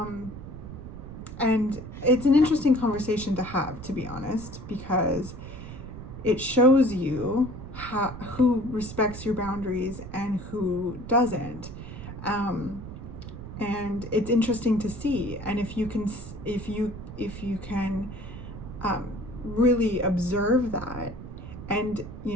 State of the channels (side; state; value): right; noise; rumble, 11 dB below the sound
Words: And it's an interesting conversation to have, to be honest, because it shows you who respects your boundaries and who doesn't. And it's interesting to see. And if you can really observe that, and, you